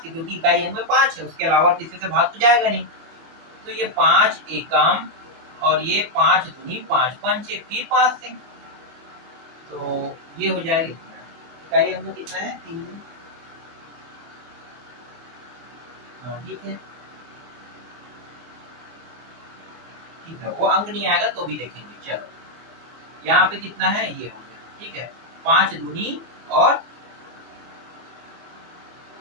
से, क्योंकि इकाई अंक में 5 है, उसके अलावा किसी से भाग तो जाएगा नहीं। तो ये 5 एकम और ये 5 दूनी 5 पंचे, फिर 5 से, तो ये हो जाएगा इकाई अंक कितना है 3। ठीक है, ठीक है, वो अंक नहीं आएगा तो भी देखेंगे। चलो यहाँ पे कितना है, ये हो गया। ठीक है, 5 दूनी और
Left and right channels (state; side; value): late; left; 24 ms